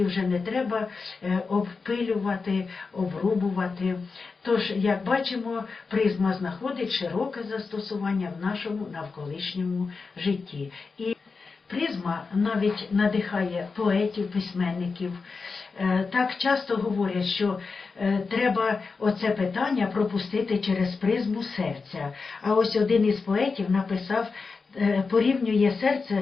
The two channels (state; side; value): quieter; right; 4.6 dB